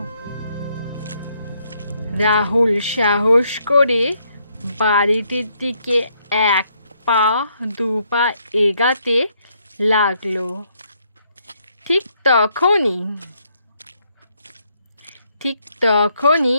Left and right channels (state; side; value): inverted; both; correlation -0.73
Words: রাহুল সাহস করে বাড়িটির দিকে এক পা দু পা এগাতে লাগলো। ঠিক